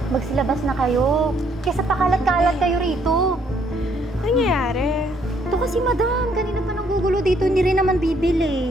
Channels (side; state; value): both; normal; correlation 0.68